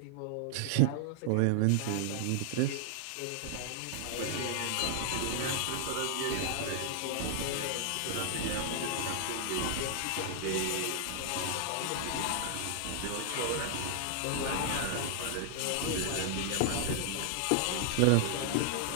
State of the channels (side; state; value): both; different; correlation -0.01